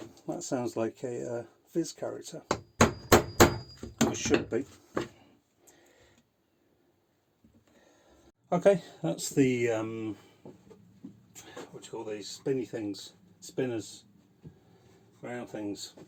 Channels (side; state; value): both; identical; correlation 1.00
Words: that sounds like a Viz character. It should be. Okay, that's the what do you call these spinny things, spinners, round things,